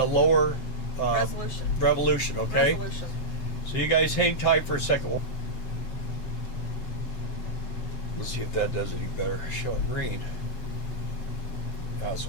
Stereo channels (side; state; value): right; late; 7.8 ms